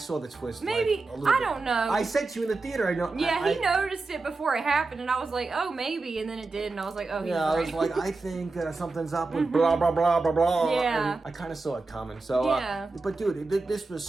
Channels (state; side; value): quieter; left; 3.6 dB